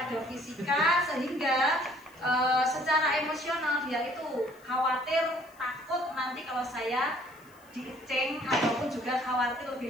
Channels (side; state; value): left; noise; hiss, 28 dB below the sound